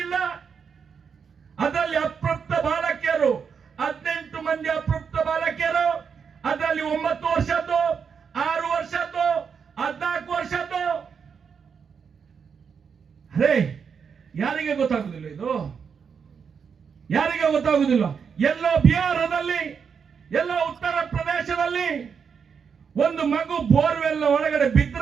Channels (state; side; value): quieter; left; 6.5 dB